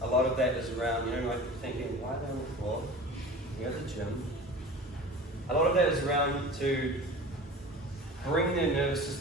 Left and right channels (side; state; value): both; normal; correlation 0.37